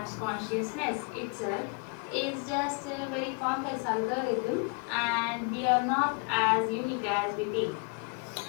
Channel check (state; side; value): quieter; right; 33.2 dB